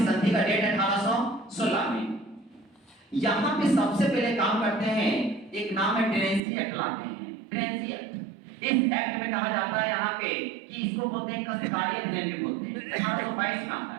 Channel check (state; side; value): drops out; left; at 6.4 s